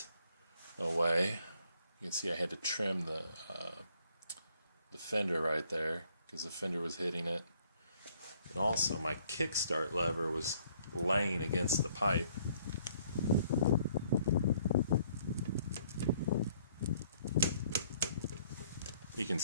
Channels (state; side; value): inverted; both; correlation -0.63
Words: away. You can see I had to trim the fender right there because the fender was hitting it. And also my kickstart lever was laying against the pipe. You can